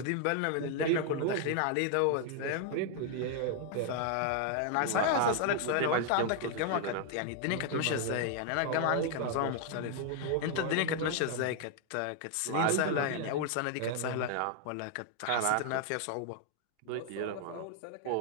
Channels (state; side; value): different; both; correlation 0.00